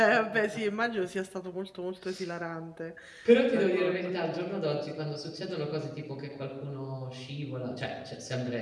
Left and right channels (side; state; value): both; identical; correlation 1.00